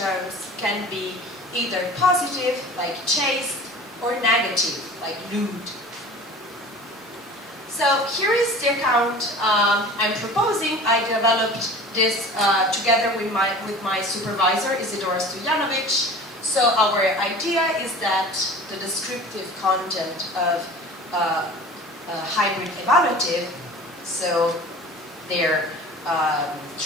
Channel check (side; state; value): both; normal; correlation 0.41